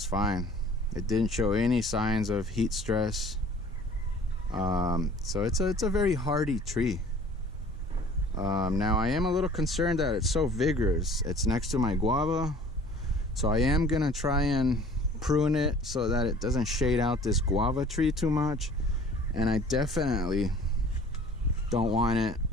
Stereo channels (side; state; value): both; normal; correlation 0.49